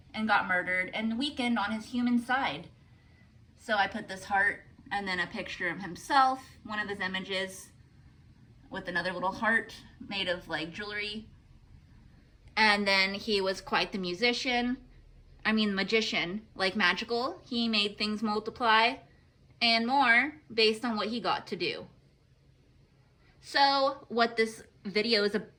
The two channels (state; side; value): identical; both; correlation 1.00